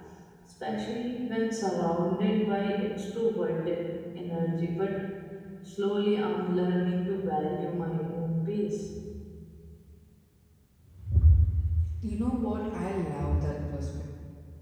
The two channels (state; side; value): identical; both; correlation 1.00